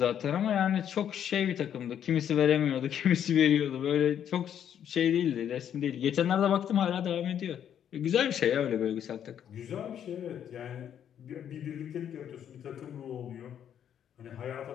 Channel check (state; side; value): quieter; right; 9.4 dB